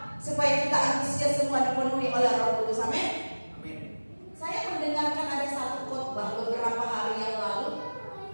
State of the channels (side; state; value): both; inverted; correlation -1.00